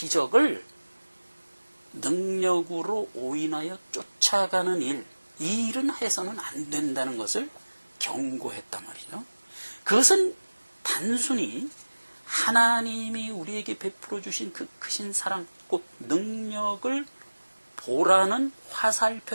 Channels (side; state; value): both; inverted; correlation -1.00